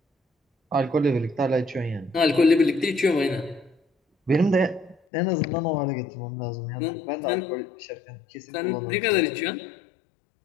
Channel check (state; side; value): drops out; right; at 5.0 s